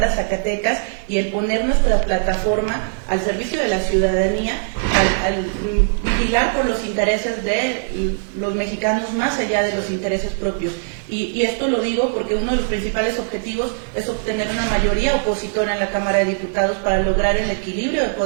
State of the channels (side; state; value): left; silent; digital silence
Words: a Zacatecas y el poner nuestra plataforma al servicio de la ciudadanía, al vigilar por los intereses de los mexicanos más allá de los intereses propios. Y esto lo digo porque uno de los principales objetivos es obtener una mayoría opositora en la Cámara de Diputados para lograr el equilibrio de